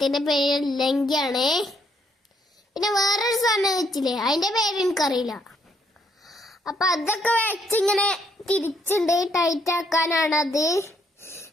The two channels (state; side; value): normal; both; correlation 0.71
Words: പേര് ലങ്കിയാണ്. പിന്നെ വേറൊരു സാധനം വെച്ചില്ലേ, അതിന്റെ പേര് എനിക്കറിയില്ല. അപ്പൊ അതൊക്കെ വെച്ചിങ്ങനെ തിരിച്ചുണ്ട്, ടൈറ്റ് ആക്കാനാണത്.